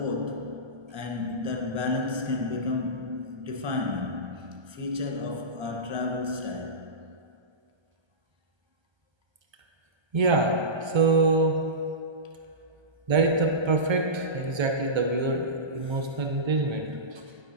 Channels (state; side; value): late; left; 1.3 ms